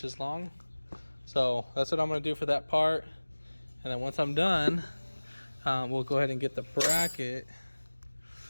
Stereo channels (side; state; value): both; inverted; correlation -1.00